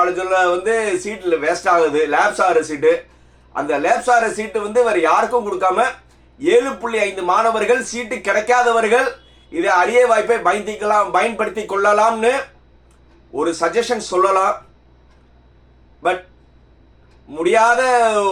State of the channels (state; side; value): identical; both; correlation 1.00